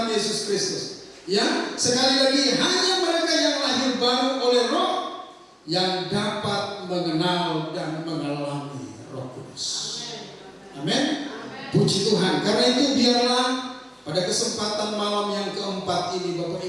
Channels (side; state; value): both; identical; correlation 1.00